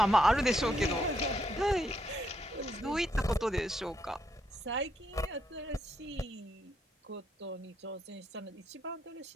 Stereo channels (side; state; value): both; normal; correlation 0.77